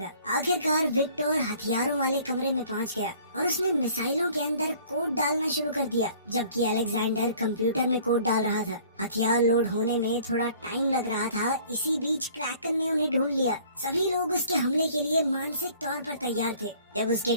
आखिरकार विक्टर हथियारों वाले कमरे में पहुंच गया और उसने मिसाइलों के अंदर कोड डालना शुरू कर दिया, जबकि अलेक्जेंडर कंप्यूटर में कोड डाल रहा था। हथियार लोड होने में थोड़ा टाइम लग रहा था। इसी बीच क्रैकन ने उन्हें ढूंढ लिया। सभी लोग उसके हमले के लिए मानसिक तौर पर तैयार थे। जब उसके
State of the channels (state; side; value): inverted; both; correlation -0.54